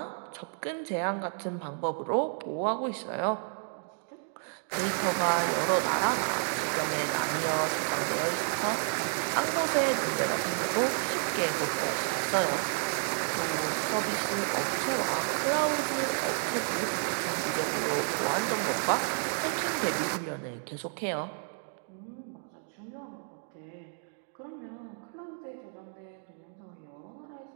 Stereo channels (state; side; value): silent; left; 57 dB below the other